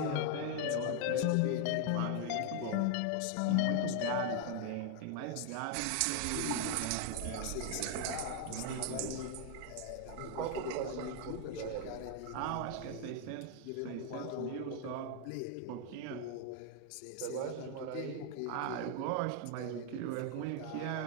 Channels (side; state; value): both; different; correlation 0.00